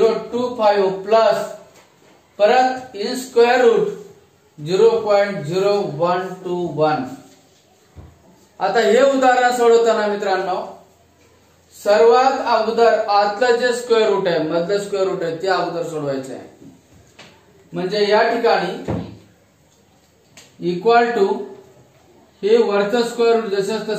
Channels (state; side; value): identical; both; correlation 1.00